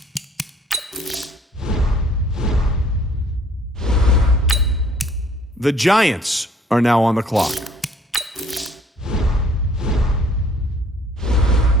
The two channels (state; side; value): normal; both; correlation 0.58